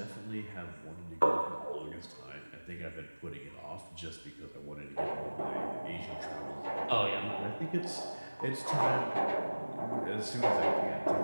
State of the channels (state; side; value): inverted; both; correlation -1.00